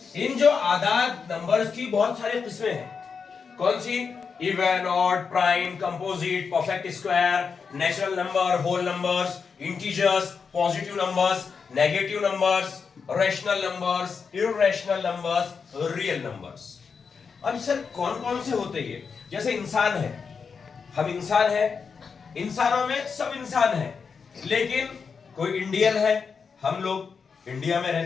इन जो आदाद नंबर्स की बहुत सारी किस्में हैं। कौन सी? Even, odd, prime, composite, perfect square, natural number, whole numbers, integers, positive numbers, negative numbers, rational numbers, irrational numbers, real numbers. अब सर कौन कौन से होते ये? जैसे इंसान है, हम इंसान है, इंसानों में सब इंसान है, लेकिन कोई इंडियन है, हम लोग इंडिया में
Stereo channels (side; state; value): right; quieter; 5.7 dB